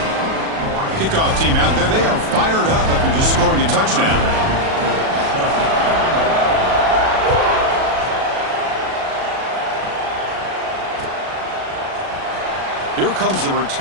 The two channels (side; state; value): left; late; 37 ms